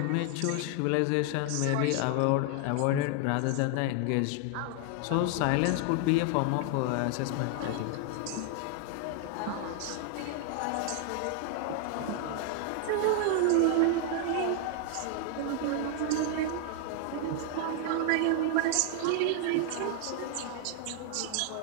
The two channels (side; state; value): both; different; correlation 0.00